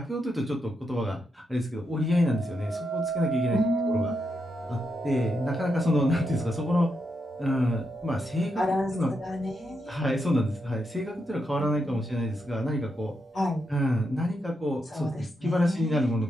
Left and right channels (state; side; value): normal; both; correlation 0.83